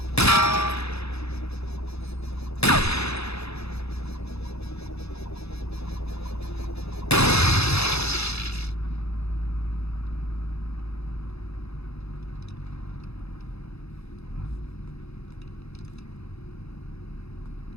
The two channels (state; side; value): late; right; 0.79 ms